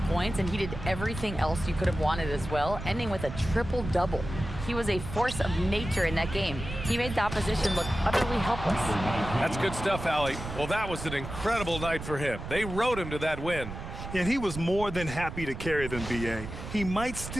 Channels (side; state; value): right; noise; rumble, 9 dB below the sound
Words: points, and he did everything else you could have wanted as well, ending with a triple-double. He was a force of nature in that game. He made the opposition look utterly helpless. That's good stuff, Allie. Well, that was an incredible night for him. They rode him to that win. And he was more than happy to carry them, B.A. He might